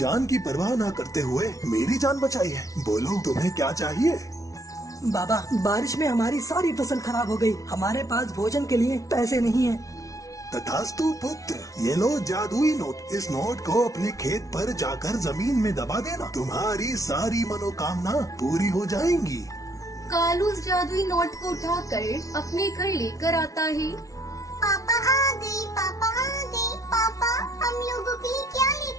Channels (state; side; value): late; right; 0.17 ms